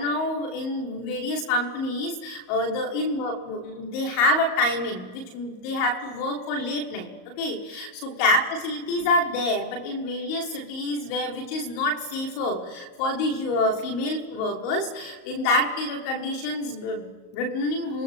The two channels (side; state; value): right; late; 38 ms